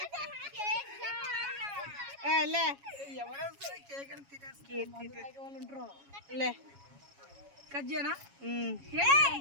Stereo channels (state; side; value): late; left; 7.2 ms